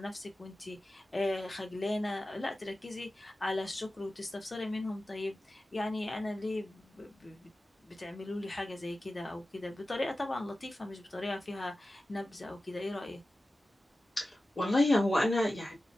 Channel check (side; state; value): both; normal; correlation 0.95